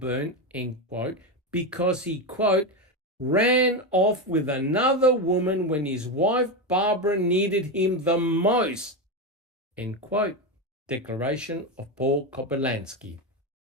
end quote, because he, quote, ran off with another woman when his wife Barbara needed him the most, end quote. Declaration of Paul Kopelansky.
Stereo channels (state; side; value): normal; both; correlation 0.13